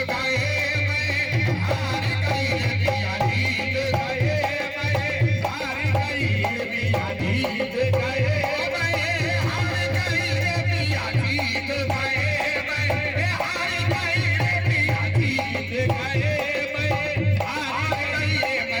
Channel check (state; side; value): identical; both; correlation 1.00